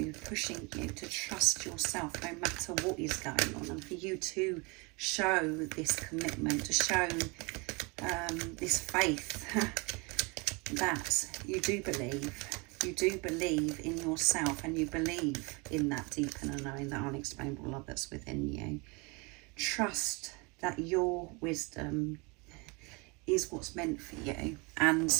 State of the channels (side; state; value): left; quieter; 29.0 dB